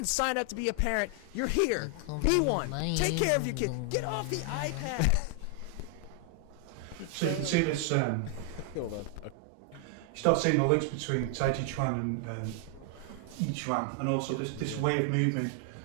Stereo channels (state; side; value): different; both; correlation 0.00